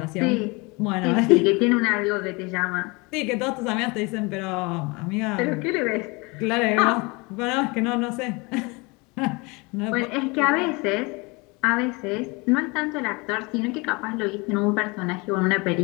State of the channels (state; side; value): quieter; right; 27.0 dB